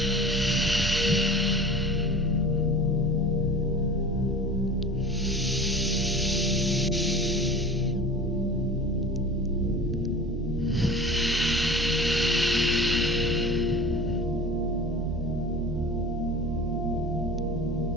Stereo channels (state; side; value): normal; both; correlation 0.38